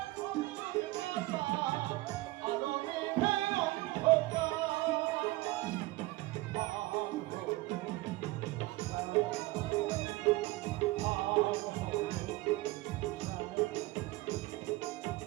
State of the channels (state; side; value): quieter; left; 19.8 dB